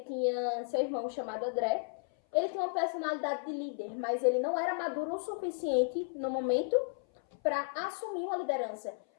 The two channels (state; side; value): silent; right; 55 dB below the other